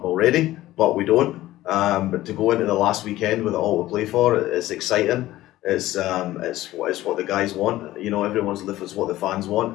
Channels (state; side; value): quieter; right; 15.7 dB